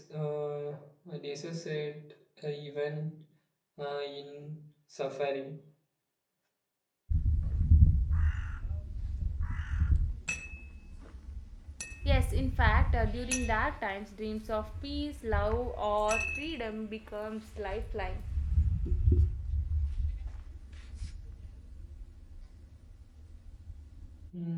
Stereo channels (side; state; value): both; identical; correlation 1.00